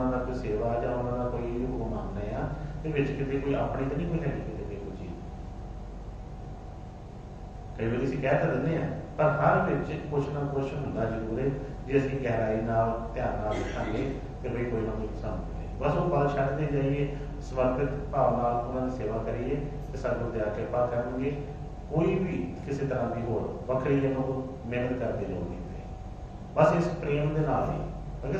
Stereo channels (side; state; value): both; identical; correlation 1.00